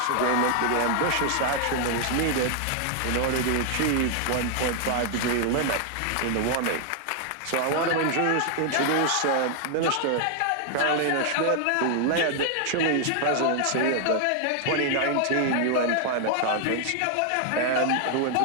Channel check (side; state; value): both; different; correlation 0.00